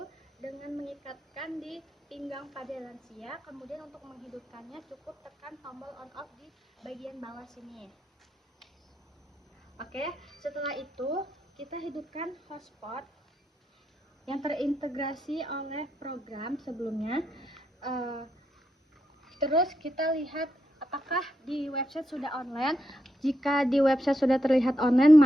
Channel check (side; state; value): both; normal; correlation 0.82